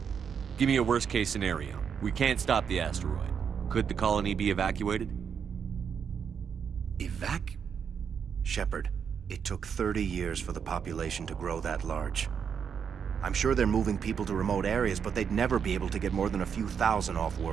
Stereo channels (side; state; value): left; quieter; 7.1 dB